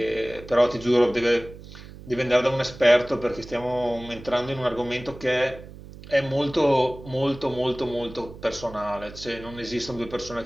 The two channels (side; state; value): right; noise; hum, 16 dB below the sound